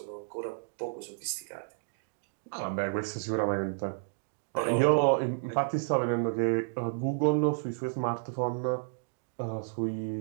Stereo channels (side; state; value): left; silent; digital silence